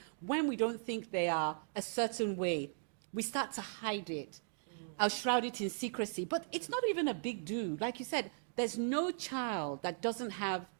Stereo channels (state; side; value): silent; left; digital silence